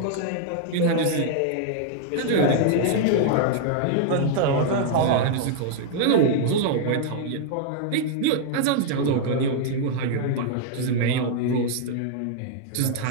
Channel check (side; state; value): both; different; correlation -0.01